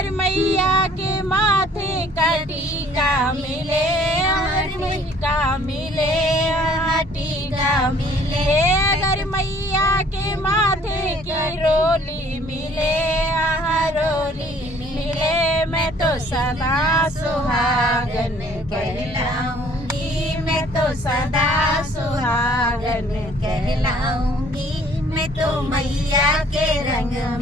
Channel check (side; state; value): both; normal; correlation 0.57